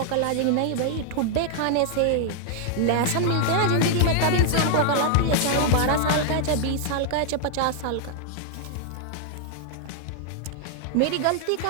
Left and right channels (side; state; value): both; different; correlation 0.00